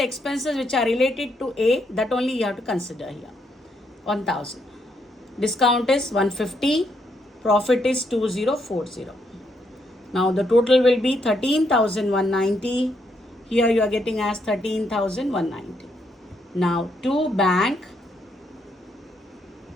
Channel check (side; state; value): both; normal; correlation 0.76